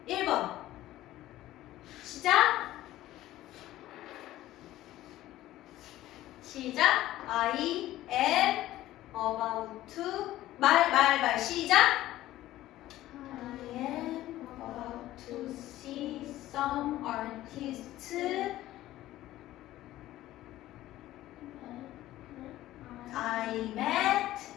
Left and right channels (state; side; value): quieter; right; 15.0 dB